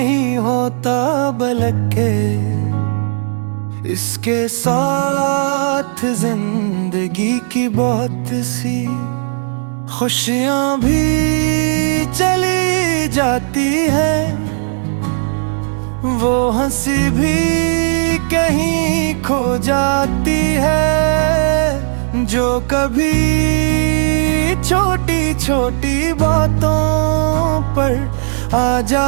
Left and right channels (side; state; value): left; silent; digital silence